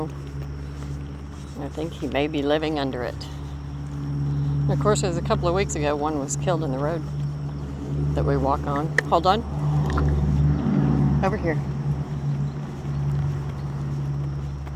I think he may be living under it. And of course, as a couple of weeks ago, one was killed in the road that we walk on. Hold on. Over here.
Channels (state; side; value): identical; both; correlation 1.00